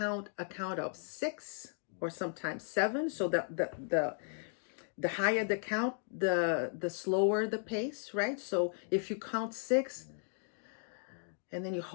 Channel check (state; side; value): silent; right; 54 dB below the other